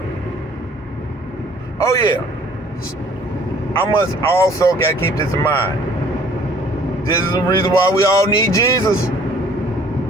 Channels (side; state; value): both; normal; correlation 0.56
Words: Oh yeah, I must also gotta keep this in mind. This is the reason why we all need Jesus,